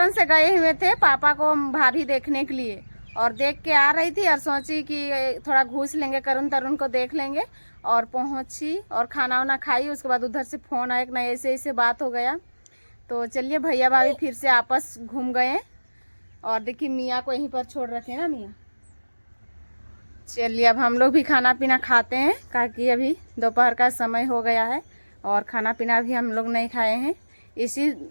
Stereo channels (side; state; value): both; inverted; correlation -1.00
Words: से गए हुए थे पापा को भाभी देखने के लिए, और देख के आ रही थी और सोची कि थोड़ा घूस लेंगे, करुण तरुण को देख लेंगे, और पहुंची और खाना वाना खाई। उसके बाद उधर से फोन आया कि नहीं ऐसे ऐसे बात हो गया। तो चलिए भैया भाभी फिर से आपस घूम गए, और देखिए मियाँ को यहीं पर छोड़ रखे ना मियाँ। चलिए अब हम लोग भी खाना पीना खाते हैं, ताकि अभी दोपहर का समय हो गया है और खाना पीना भी हम लोग नहीं खाए हैं। इसी